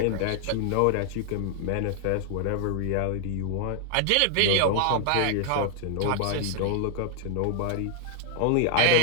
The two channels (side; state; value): both; different; correlation 0.00